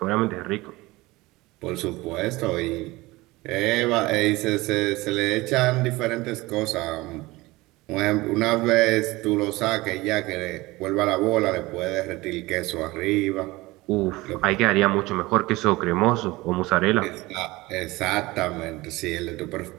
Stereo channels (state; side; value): quieter; left; 20.8 dB